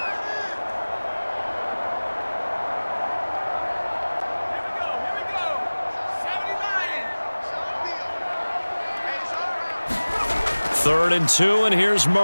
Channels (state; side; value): inverted; both; correlation -1.00